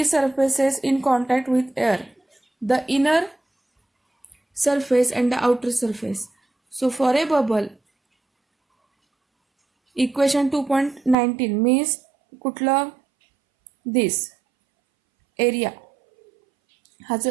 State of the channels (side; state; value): left; drops out; at 11.2 s